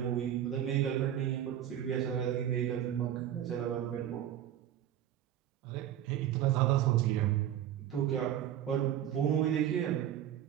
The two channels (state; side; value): quieter; left; 11.0 dB